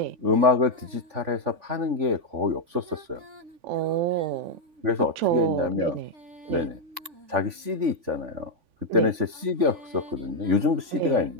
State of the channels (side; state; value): left; late; 3.5 ms